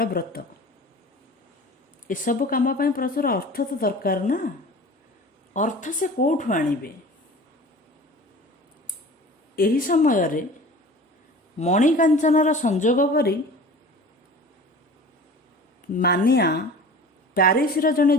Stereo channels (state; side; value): normal; both; correlation 0.40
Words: ବ୍ରତ। ଏସବୁ କାମ ପାଇଁ ପ୍ରଚୁର ଅର୍ଥ ତ ଦରକାର ନା। ଅର୍ଥ ସେ କେଉଁଠୁ ଆଣିବେ? ଏହି ସମୟରେ ମଣିକାଞ୍ଚନର ସଂଯୋଗ ପରି ମାନିଆ ପ୍ୟାରିସର ଜଣେ